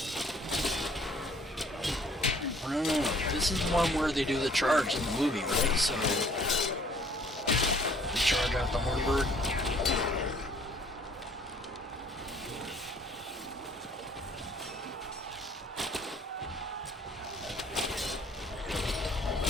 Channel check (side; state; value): both; normal; correlation 0.58